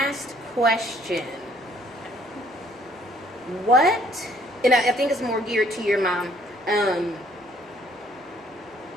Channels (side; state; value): both; normal; correlation 0.62